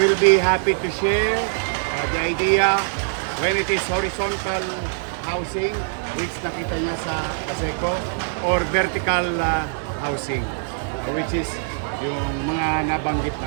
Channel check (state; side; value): silent; left; digital silence